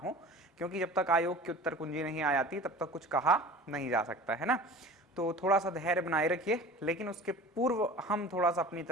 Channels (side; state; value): both; normal; correlation 0.40